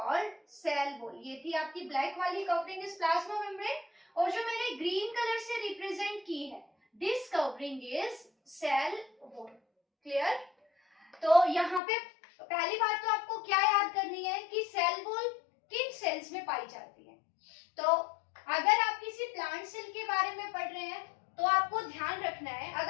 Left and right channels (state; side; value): drops out; right; at 11.8 s